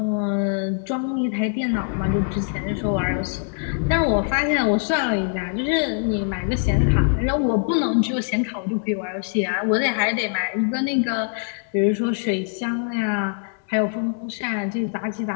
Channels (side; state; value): right; silent; 63 dB below the other